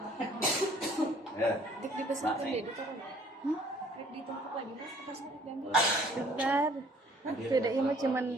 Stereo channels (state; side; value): normal; both; correlation 0.57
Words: Ya. Dik dipesan deh, ditaruh. Dik ditumpuk lagi mas, pas diambil. Bentar. Beda mah cuman